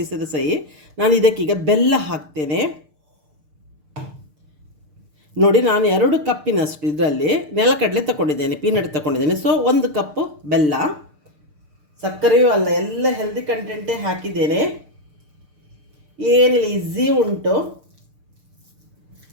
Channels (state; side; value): late; left; 6.7 ms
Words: ಸಹಿ. ನಾನು ಇದಕ್ಕೀಗ ಬೆಲ್ಲ ಹಾಕ್ತೇನೆ. ನೋಡಿ ನಾನು 2 ಕಪ್ಪಿನಷ್ಟು ಇದರಲ್ಲಿ ನೆಲಕಡಲೆ ತಗೊಂಡಿದ್ದೇನೆ, ಪೀನಟ್ ತಗೊಂಡಿದ್ದೇನೆ. ಸೊ 1 ಕಪ್ಪು ಬೆಲ್ಲ, ಸಕ್ಕರೆಯೂ ಅಲ್ಲ, ಎಲ್ಲ ಹೆಲ್ದಿ ಕಂಟೆಂಟೇ ಹಾಕಿದ್ದೇನೆ. ಏನಿಲ್ಲ, ಈಸಿ ಉಂಟು.